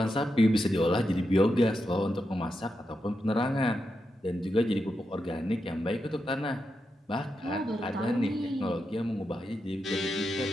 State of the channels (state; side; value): normal; both; correlation 0.87